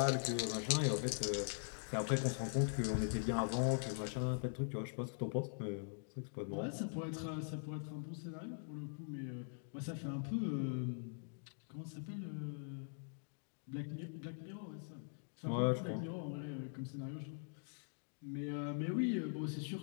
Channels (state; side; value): silent; right; digital silence